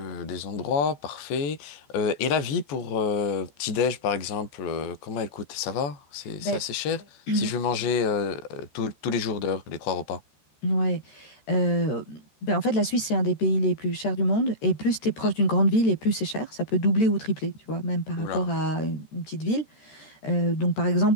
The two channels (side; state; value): right; late; 13 ms